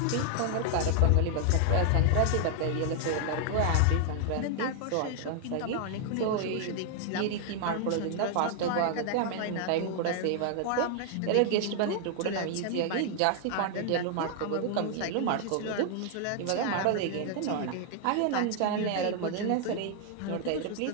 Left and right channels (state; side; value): different; both; correlation 0.00